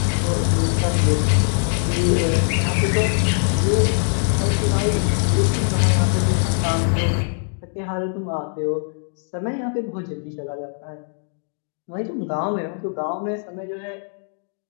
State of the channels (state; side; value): silent; right; digital silence